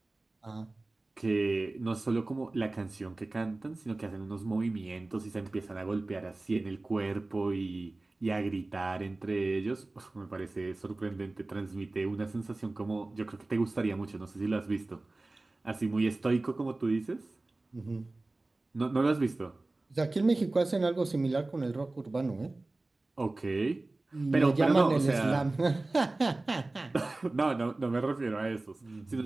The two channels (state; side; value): quieter; left; 3.0 dB